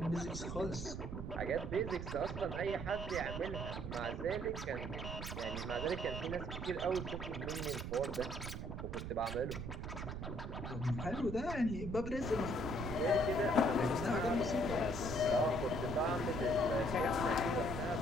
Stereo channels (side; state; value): right; noise; rumble, 6 dB below the sound